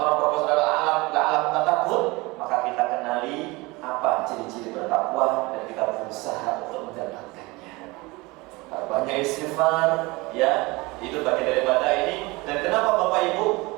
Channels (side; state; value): left; quieter; 23.5 dB